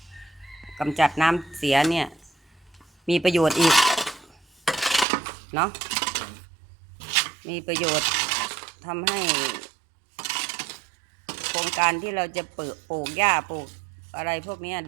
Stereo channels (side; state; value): left; drops out; at 5.1 s